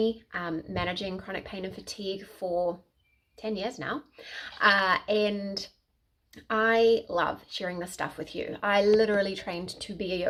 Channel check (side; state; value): both; identical; correlation 1.00